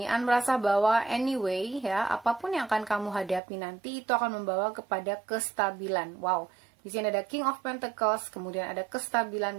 merasa bahwa anyway ya, apapun yang akan kamu hadapi nanti itu akan membawa kepada kestabilan. Wow. Di sini ada King of Pentacles, kemudian ada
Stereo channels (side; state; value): left; drops out; at 3.4 s